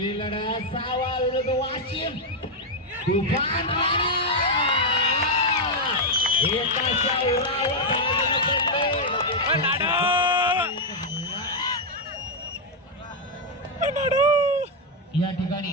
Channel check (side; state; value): both; normal; correlation 0.01